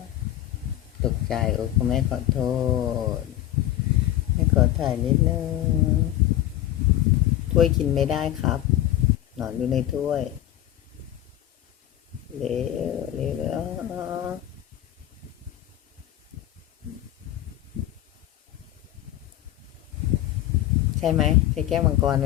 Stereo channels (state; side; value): quieter; right; 13.3 dB